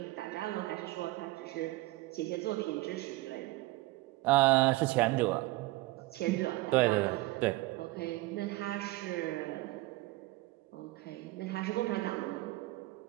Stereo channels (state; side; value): quieter; left; 20.0 dB